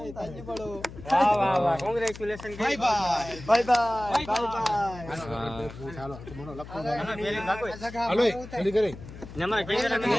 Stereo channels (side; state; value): left; noise; hum, 14 dB below the sound